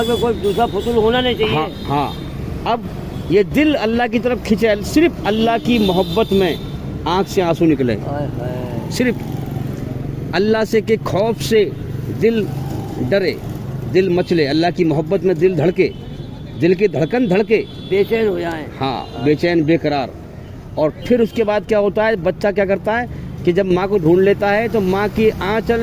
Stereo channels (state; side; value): identical; both; correlation 1.00